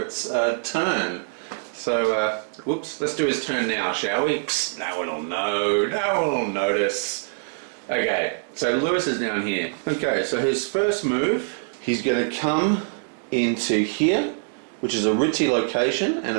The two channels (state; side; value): silent; left; digital silence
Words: turn. So, whoops, let's do his turn now, shall we? Psst, no one will know. No one will notice. Okay, so Lewis is down here. Okay, so his first move, he's going to come into here, which is a Ritzy location, and